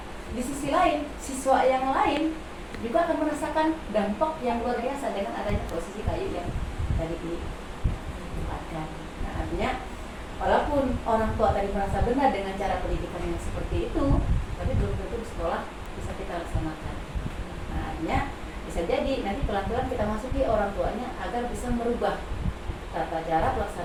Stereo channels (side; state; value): both; identical; correlation 1.00